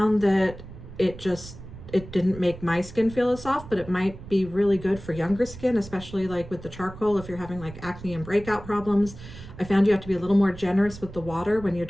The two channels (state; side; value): noise; right; rumble, 15 dB below the sound